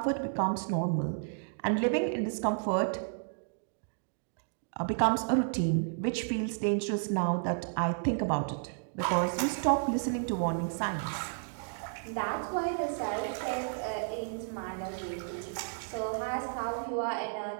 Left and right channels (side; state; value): left; silent; digital silence